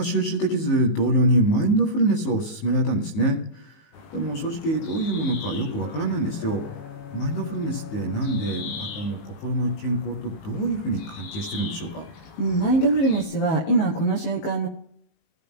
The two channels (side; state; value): right; late; 19 ms